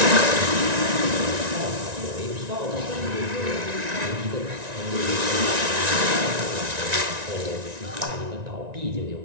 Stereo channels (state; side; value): late; left; 1.9 ms